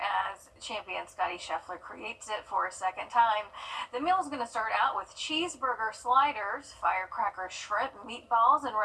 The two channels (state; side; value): identical; both; correlation 1.00